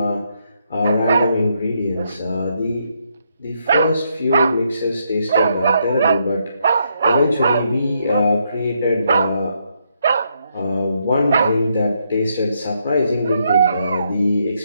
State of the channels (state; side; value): inverted; both; correlation -0.77